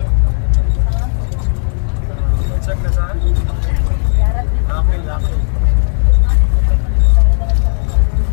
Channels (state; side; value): silent; right; 63 dB below the other